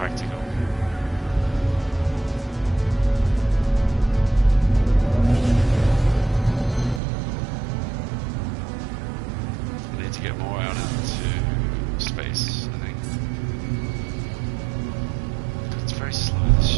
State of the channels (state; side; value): drops out; left; at 7.0 s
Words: I need to get more out into space, I think. It's very slow, this